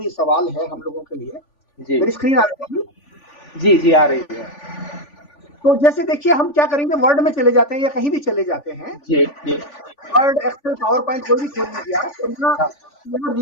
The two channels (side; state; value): right; late; 3.5 ms